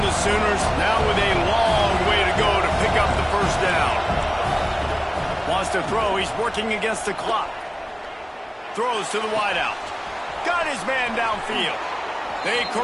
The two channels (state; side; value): identical; both; correlation 1.00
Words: the to throw. He's working against the clock. Throws to the wideout. Got his man downfield. They